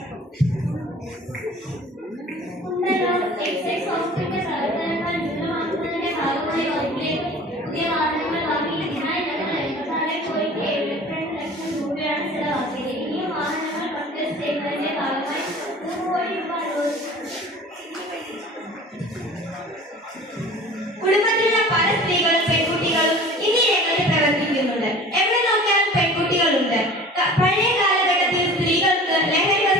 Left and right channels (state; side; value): normal; both; correlation 0.43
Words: എക്സൈസ് ഹോസ്പിറ്റൽ പ്രവർത്തനങ്ങൾ വിപുലമാക്കുന്നതിന്റെ ഭാഗമായി പുതിയ വാഹനങ്ങൾ വാങ്ങിയതിനായി ഞങ്ങൾ 84.72 ലക്ഷം രൂപയാണ് ചെലവാക്കിയത്. ഈ വാഹനങ്ങൾ പർച്ചേസ് ചെയ്യുന്നതിന്റെ ഭാഗമായി 1 കോടി രൂപ കുടുംബത്തിലുള്ള പല സ്ത്രീകളും പെൺകുട്ടികളും ഇന്ന് രംഗത്ത് പ്രവർത്തിക്കുന്നുണ്ട്. എവിടെ നോക്കിയാലും പെൺകുട്ടികളുണ്ട്. പഴയ കാലഘട്ടത്തിൽ സ്ത്രീകൾക്ക് ലഹരി